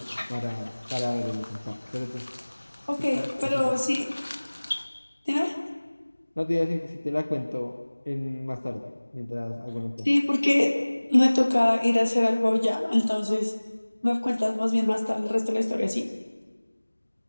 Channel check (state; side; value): inverted; both; correlation -1.00